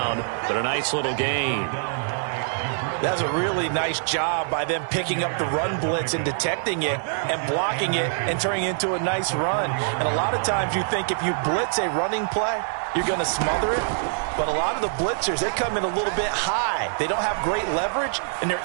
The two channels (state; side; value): silent; left; 59 dB below the other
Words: But a nice little gain. That's a really nice job by them picking up the run blitz and detecting it and blocking it and turning it into a nice run. And a lot of times you think if you blitz a running play, you're going to smother it. But a lot of the blitzers, they come in a little bit high. They don't have great leverage, and they're